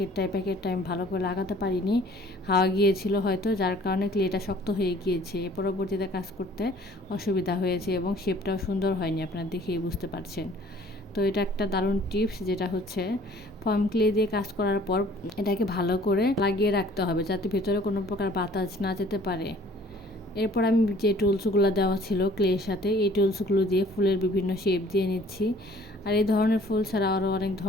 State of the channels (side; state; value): both; normal; correlation 0.55